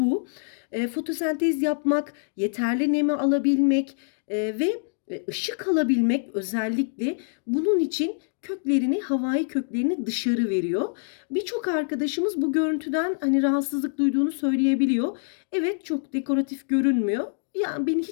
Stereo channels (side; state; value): right; silent; digital silence